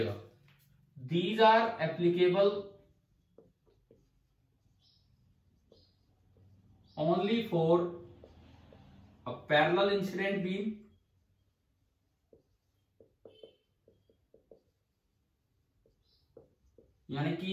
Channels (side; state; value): both; identical; correlation 1.00